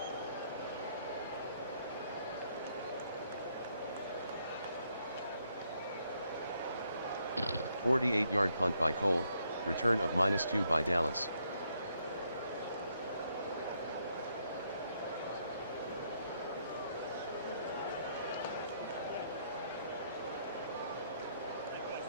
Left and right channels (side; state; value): both; inverted; correlation -0.73